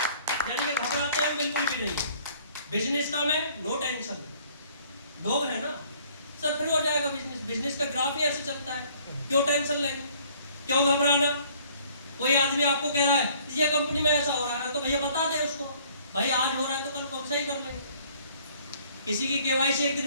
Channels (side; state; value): both; inverted; correlation -0.58